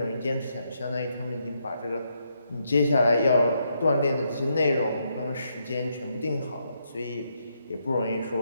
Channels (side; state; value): both; inverted; correlation -0.78